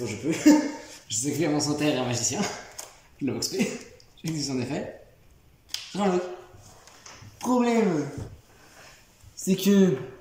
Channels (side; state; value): both; identical; correlation 1.00